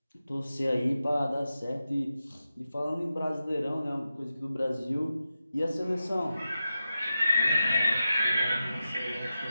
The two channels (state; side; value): inverted; both; correlation -0.91